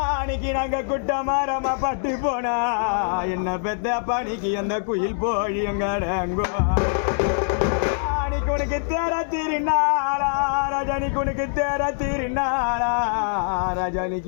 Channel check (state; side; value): silent; right; digital silence